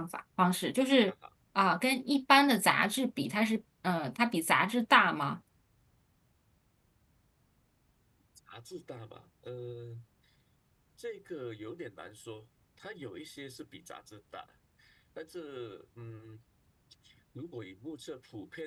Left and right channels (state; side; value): identical; both; correlation 1.00